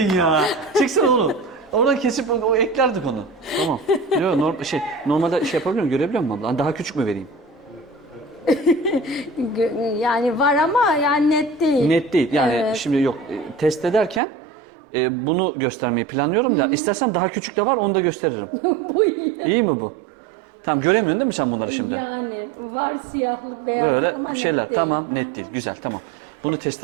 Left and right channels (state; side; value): drops out; left; at 14.2 s